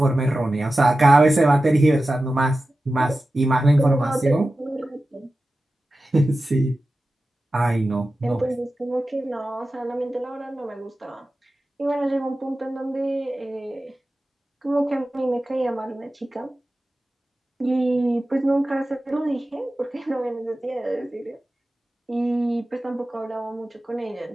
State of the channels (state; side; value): normal; both; correlation 0.94